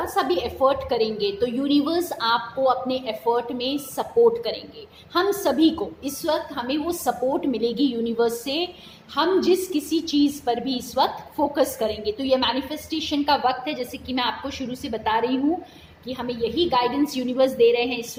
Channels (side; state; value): both; identical; correlation 1.00